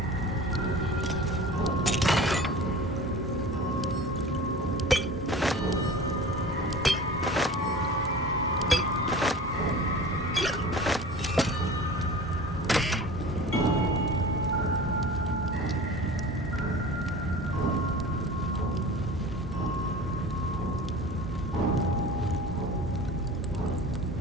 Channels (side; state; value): both; normal; correlation 0.38